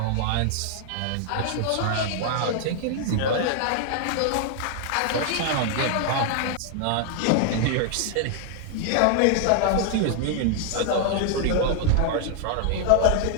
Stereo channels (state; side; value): different; both; correlation 0.00